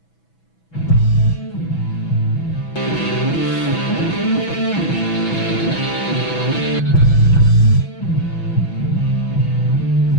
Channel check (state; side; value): late; right; 6.1 ms